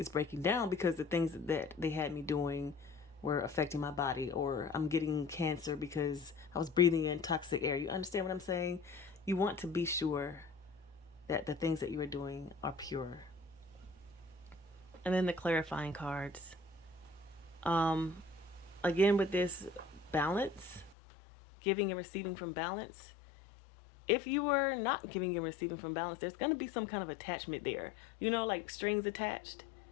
breaking down because the things that they had me doing were affecting my body, or I'm getting cancer because I was breathing in toxic air. You understand what I'm saying? You want to be sure that the things that you are doing are pure. And then the clarifying cards. Again, with this balance, giving and receiving from balance. If you were not giving and receiving from balance, there's going to be some kind of attachment there. Like strings attached.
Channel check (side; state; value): right; drops out; at 21.0 s